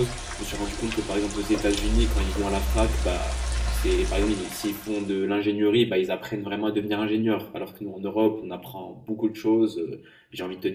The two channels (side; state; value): both; identical; correlation 1.00